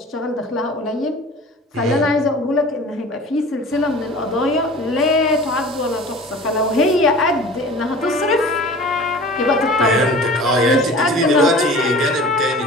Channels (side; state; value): both; normal; correlation 0.41